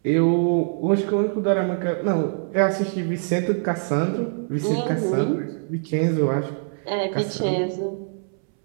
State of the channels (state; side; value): silent; left; 63 dB below the other